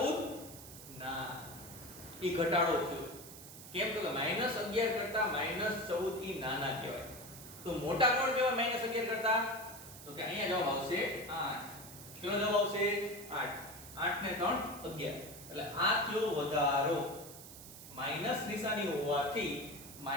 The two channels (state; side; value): noise; right; hiss, 15 dB below the sound